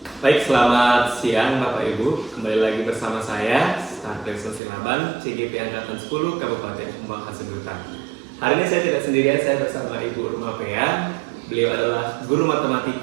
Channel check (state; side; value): drops out; left; at 4.6 s